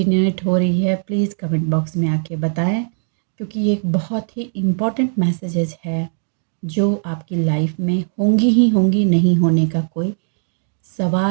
हो रही है, प्लीज़ कमेंट बॉक्स में आके बताएं, क्योंकि ये एक बहुत ही इम्पॉर्टेंट मैसेजेस है जो आपकी लाइफ में होंगी ही होंगी, नहीं होने का कोई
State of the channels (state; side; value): silent; left; 66 dB below the other